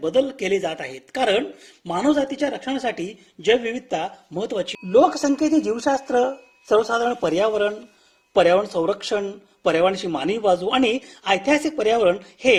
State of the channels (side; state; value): both; identical; correlation 1.00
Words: बदल केले जात आहेत. कारण मानवजातीच्या रक्षणासाठी जैवविविधता महत्वाची. लोकसंख्येचे जीवशास्त्र, सर्वसाधारण पर्यावरण संरक्षण, पर्यावरणाची मानवी बाजू आणि ऐतिहासिक पर्यावरण